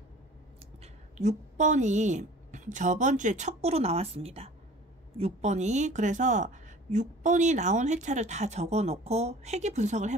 6번이 저번 주에 첫 구로 나왔습니다. 6번이. 그래서 6번이 나온 회차를 다 적어 놓고 회귀 분석을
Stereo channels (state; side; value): normal; both; correlation 0.46